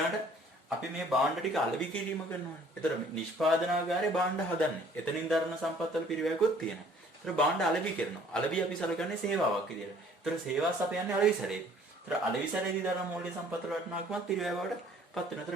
අපි මේ භාණ්ඩ ටික අලෙවි කිරීම කරනවානේ. ඒතර නිෂ්පාදනාගාරේ භාණ්ඩ හදන්නේ. එතනින් දරන සම්පත්වල පිරිවැයකුත් තියෙනවා. ඒතර භාණ්ඩ අලෙවි කරනවා. අලෙවි අපි සලකන්නේ සේවාවක් විදියට. ඒතර සේවාව සපයන්නේ අලෙවිසරේ. ඒතර අලෙවිසරේදී දරන මූල්‍ය සම්පත්වල වටිනාකමත් පිරිවැය බවට පත් වෙනවා. ඒතර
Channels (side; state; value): both; normal; correlation 0.56